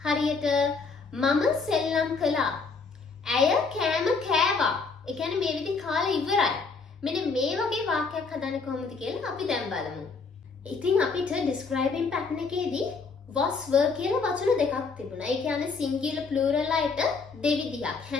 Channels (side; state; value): right; quieter; 4.6 dB